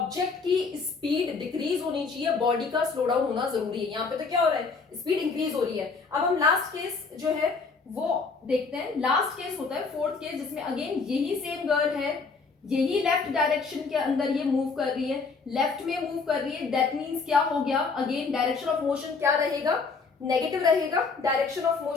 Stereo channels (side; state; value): right; quieter; 4.6 dB